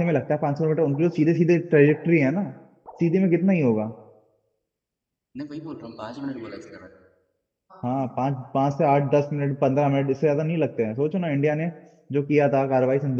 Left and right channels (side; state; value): both; identical; correlation 1.00